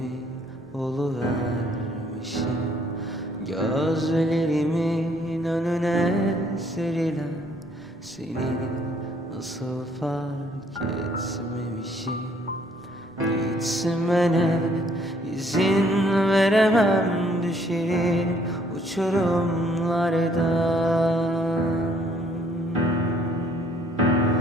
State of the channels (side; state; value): both; normal; correlation 0.63